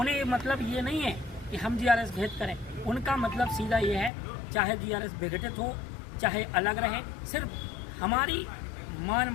मतलब ये नहीं है कि हम जीआरएस भेद करें, उनका मतलब सीधा ये है चाहे जीआरएस विघटित हो, चाहे अलग रहे, सिर्फ हमारी मान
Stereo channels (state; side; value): drops out; right; at 4.1 s